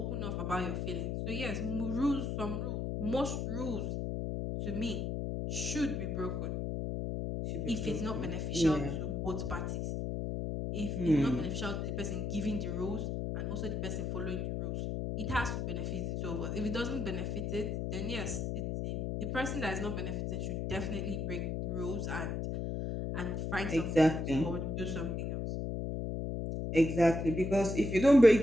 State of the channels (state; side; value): noise; left; hum, 2 dB below the sound